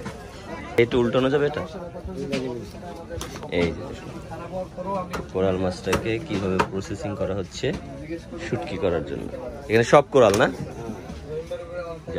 একটু উল্টানো যাবে এটা। এই কোরাল মাছটাকে কিভাবে প্রসেসিং করা হচ্ছে শুটকি করার জন্য। এখানে সব কোরাল না, যে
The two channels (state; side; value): identical; both; correlation 1.00